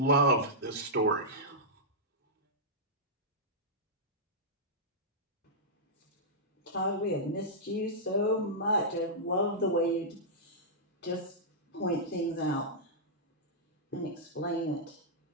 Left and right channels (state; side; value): normal; both; correlation -0.12